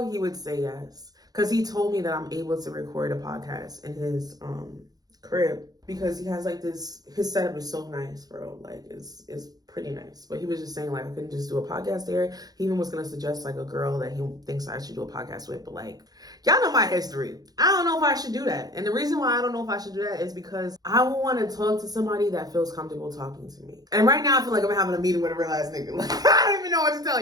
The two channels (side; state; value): left; late; 0.19 ms